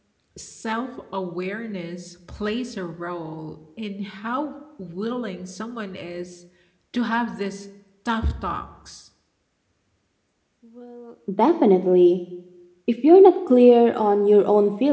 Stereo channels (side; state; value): both; identical; correlation 1.00